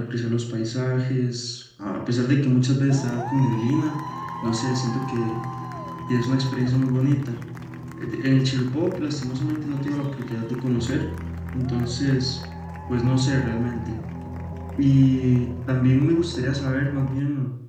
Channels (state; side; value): identical; both; correlation 1.00